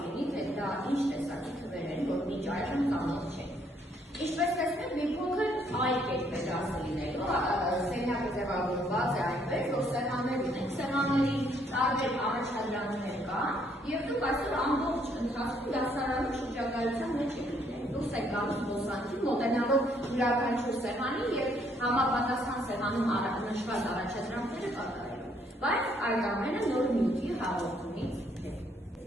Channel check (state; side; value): normal; both; correlation 0.68